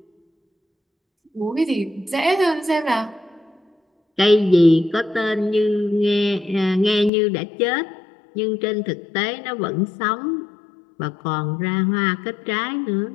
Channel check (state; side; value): drops out; right; at 7.1 s